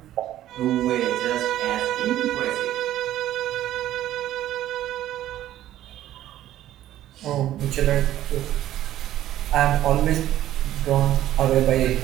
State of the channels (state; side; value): quieter; left; 13.1 dB